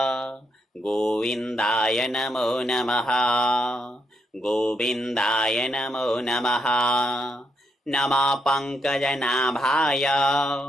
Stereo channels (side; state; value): both; normal; correlation 0.79